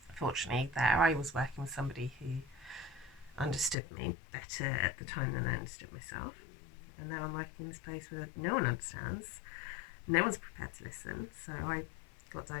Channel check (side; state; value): right; drops out; at 3.8 s